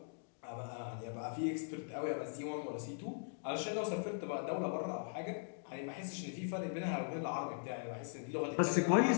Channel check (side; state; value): right; silent; digital silence